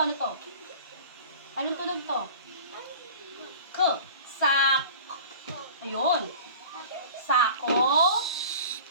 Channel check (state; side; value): inverted; both; correlation -0.41